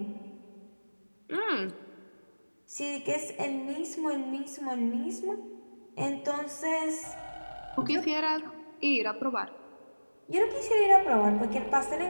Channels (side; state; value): both; inverted; correlation -1.00